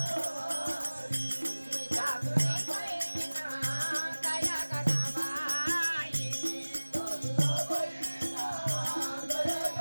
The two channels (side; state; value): both; inverted; correlation -1.00